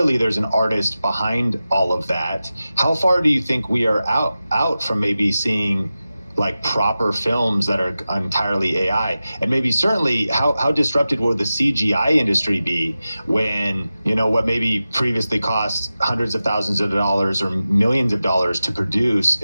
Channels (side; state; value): both; inverted; correlation -0.94